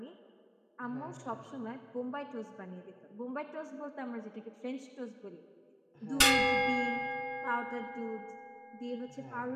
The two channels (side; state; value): both; identical; correlation 1.00